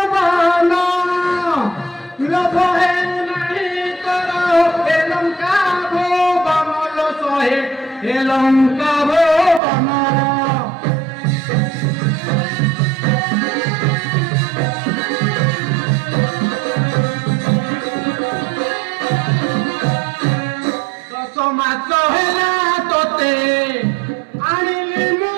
बन लोभ है नहीं तोर ए लंका भो बमल सहे ए लंका भो बन माच हेला तोते आनिली मु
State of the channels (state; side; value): drops out; left; at 9.6 s